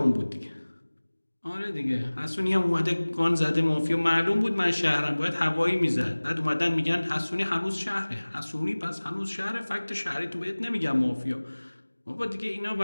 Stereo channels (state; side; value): inverted; both; correlation -1.00